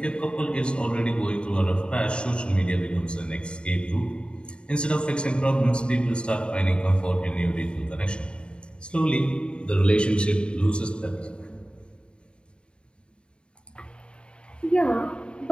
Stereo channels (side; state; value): right; late; 0.053 ms